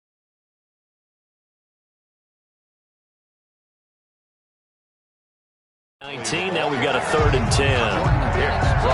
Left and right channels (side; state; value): both; identical; correlation 1.00